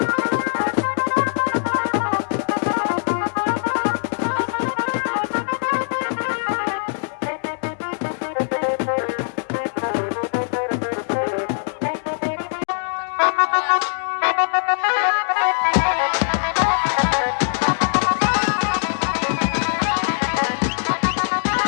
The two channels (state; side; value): silent; right; digital silence